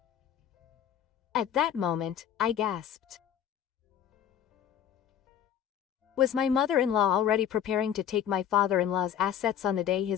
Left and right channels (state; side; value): quieter; right; 9.5 dB